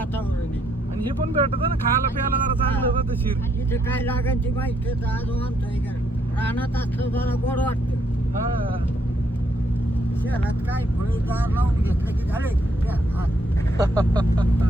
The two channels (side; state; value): both; normal; correlation 0.73